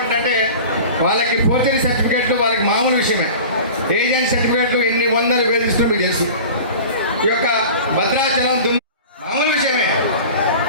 వాళ్ళకి ఫోర్జరీ సర్టిఫికేట్లు వాళ్ళకి మామూలు విషయమే. ఏజెంట్ సర్టిఫికేట్లు ఎన్ని వందలు వేధిస్తున్నా మీకు తెలుసు. ఈ యొక్క భద్రాచలం మామూలు విషయమే.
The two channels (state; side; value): inverted; both; correlation -0.38